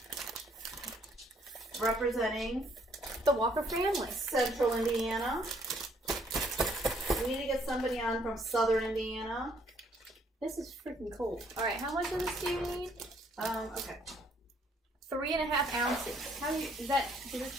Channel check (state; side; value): normal; both; correlation 0.66